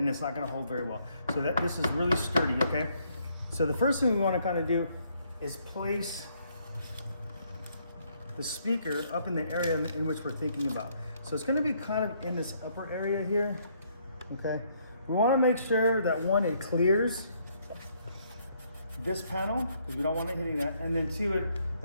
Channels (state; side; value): inverted; both; correlation -0.70